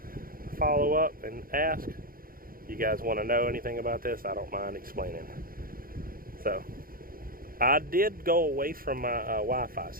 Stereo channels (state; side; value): late; left; 0.42 ms